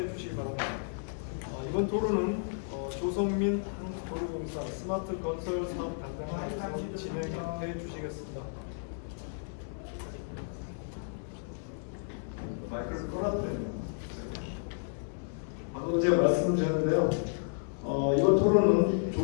주시기 바랍니다. 이번 토론은 조성민 한국도로공사 스마트 건설 사업 담당자께서 진행해 주시겠습니다. 마이크를 꺼놨네요. 방금 제가 말씀을 드렸는데요. 이번 토론은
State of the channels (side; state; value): right; silent; 56 dB below the other